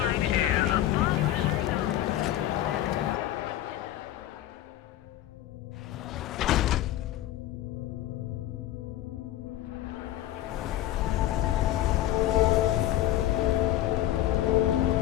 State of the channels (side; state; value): right; quieter; 13.4 dB